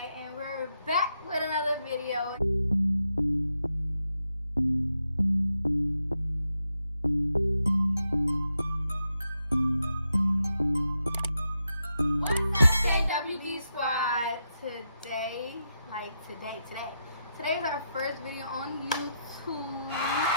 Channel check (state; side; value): inverted; both; correlation -0.83